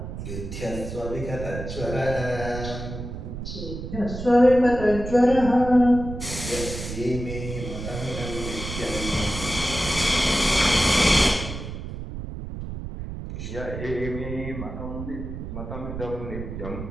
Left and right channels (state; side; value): noise; right; rumble, 8 dB below the sound